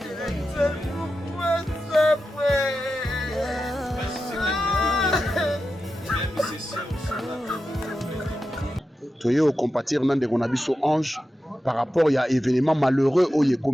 Toye au compatir nan de konabiso ange par rapport à événement malheureux au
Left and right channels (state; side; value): normal; both; correlation 0.91